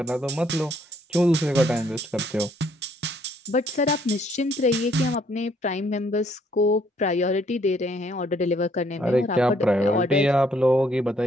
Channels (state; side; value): normal; both; correlation 0.66